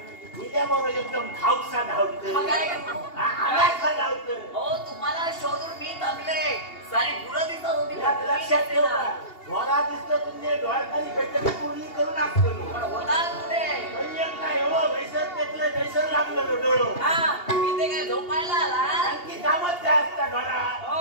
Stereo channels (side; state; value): right; late; 2.8 ms